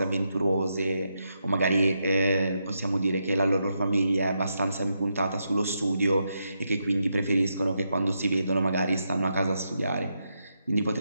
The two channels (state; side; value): inverted; both; correlation -0.83